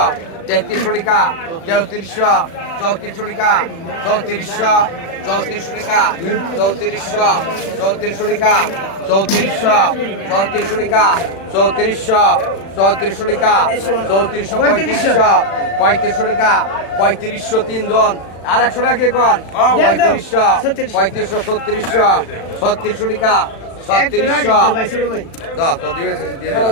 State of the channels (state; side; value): late; right; 36 ms